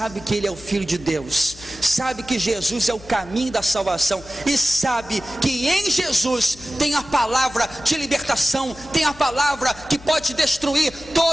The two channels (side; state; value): left; noise; hum, 20 dB below the sound